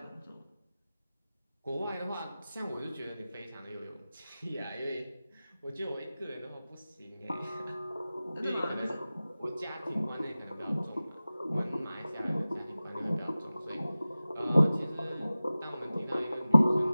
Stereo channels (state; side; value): inverted; both; correlation -0.97